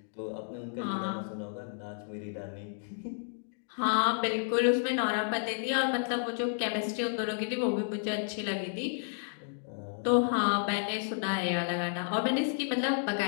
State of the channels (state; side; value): silent; right; digital silence